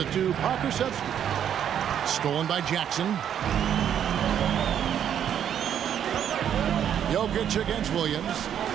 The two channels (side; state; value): left; quieter; 9.3 dB